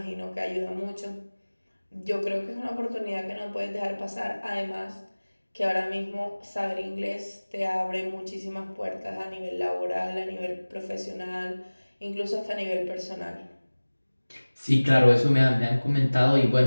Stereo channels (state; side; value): inverted; both; correlation -1.00